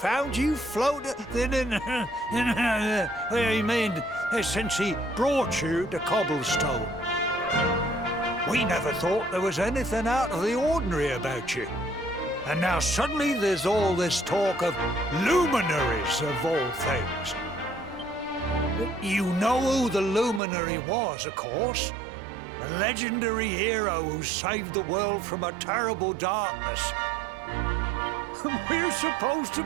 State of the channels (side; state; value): left; drops out; at 20.4 s